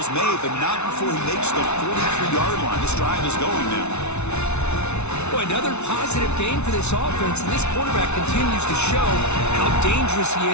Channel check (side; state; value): right; late; 0.81 ms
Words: made, but not before he makes the 43-yard line. This drive is going now. Boy, another positive game for this offense, and this quarterback continues to show how dangerous he